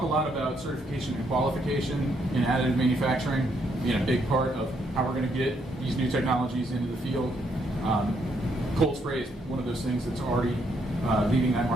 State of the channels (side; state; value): both; normal; correlation 0.74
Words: a lot about certification and qualification in additive manufacturing being a big part of how we're going to get these new technologies into the field. Cold spray is one of those things that's already leaving that